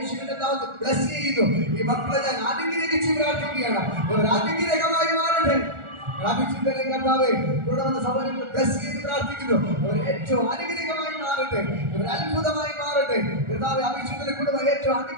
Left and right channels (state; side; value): late; left; 1.4 ms